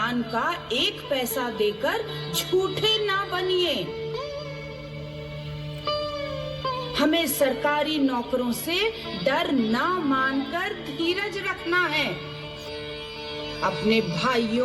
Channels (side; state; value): both; identical; correlation 1.00